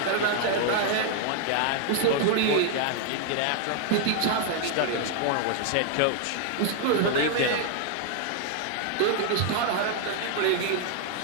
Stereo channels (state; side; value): different; both; correlation 0.00